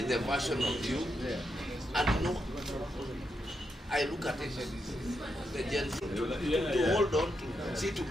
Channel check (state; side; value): normal; both; correlation 0.83